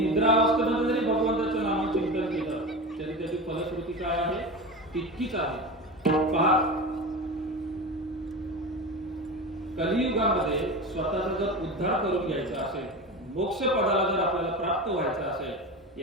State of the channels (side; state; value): both; normal; correlation 0.27